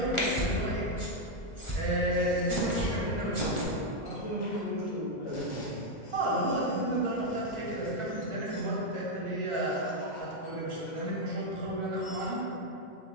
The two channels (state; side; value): late; right; 2.0 ms